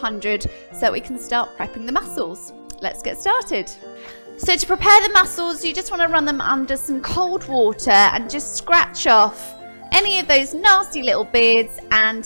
so we can start prepping the mussels. Let's get started. So to prepare the mussels, you just want to run them under some cold water and just scratch off any of those nasty little beards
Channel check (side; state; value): both; inverted; correlation -1.00